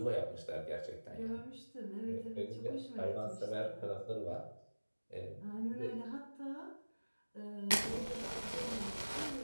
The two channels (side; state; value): both; inverted; correlation -1.00